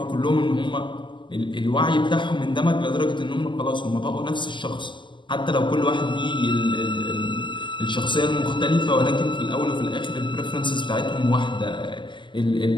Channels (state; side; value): late; right; 0.23 ms